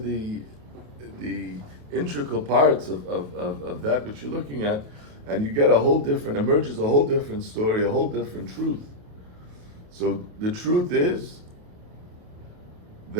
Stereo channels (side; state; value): left; late; 28 ms